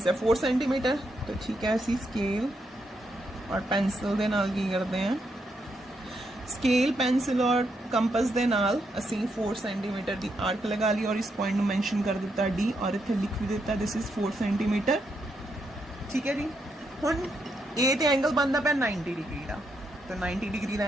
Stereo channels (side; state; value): both; normal; correlation 0.80